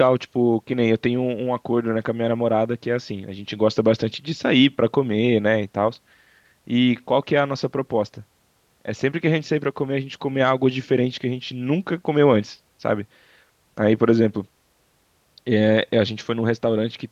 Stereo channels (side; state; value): both; identical; correlation 1.00